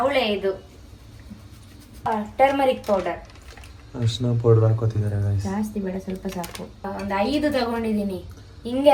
ಇದು ಟರ್ಮರಿಕ್ ಪೌಡರ್. ಅರ್ಶಿನ ಪೌಡರ್ ಹಾಕೋತಿದ್ದಾರೆ ಗೈಸ್. ಜಾಸ್ತಿ ಬೇಡ, ಸ್ವಲ್ಪ ಸಾಕು. ಒಂದು 5 ತಗೊಂಡಿದ್ದೀನಿ, ಹಿಂಗೆ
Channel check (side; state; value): both; identical; correlation 1.00